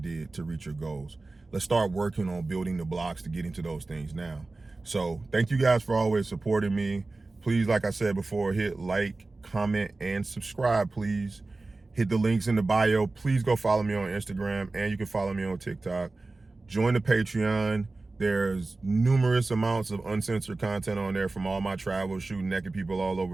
to reach your goals. Let's start working on building the blocks to get into those things now. So thank you guys for always supporting me. Please, like I said before, hit like, comment, and subscribe, please. Hit the links in the bio. Please go follow me on Instagram, and you can follow me on TikTok. Join the Patreon. There's numerous amounts of uncensored content on there from all my travels, shooting naked people all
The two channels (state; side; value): quieter; left; 3.3 dB